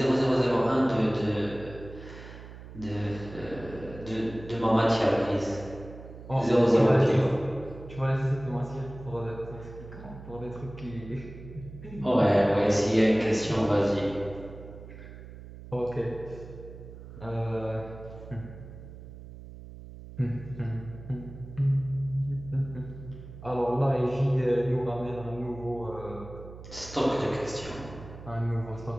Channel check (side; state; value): right; noise; hum, 15 dB below the sound